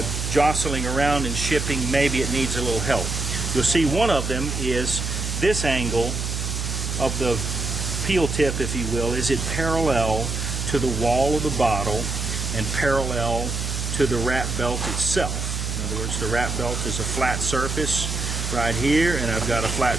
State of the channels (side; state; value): right; noise; hum, 3 dB below the sound